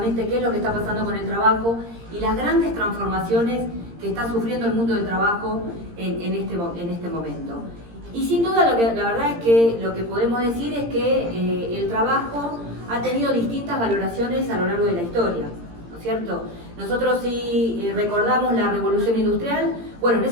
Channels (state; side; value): late; left; 17 ms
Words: qué es lo que está pasando con el trabajo y las grandes transformaciones que está sufriendo el mundo del trabajo en este momento. Y sin duda, la verdad es que lo que podemos decir es que el trabajo ha tenido distintas valoraciones a lo largo de la historia, ¿no es cierto? Nosotros si recordamos la revolución industrial, bueno, en